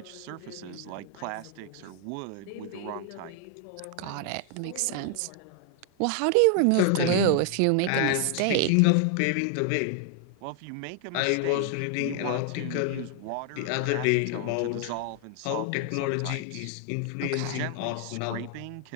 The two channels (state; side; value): different; both; correlation 0.00